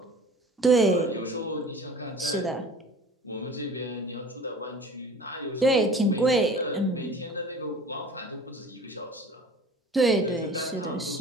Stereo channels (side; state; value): both; normal; correlation 0.43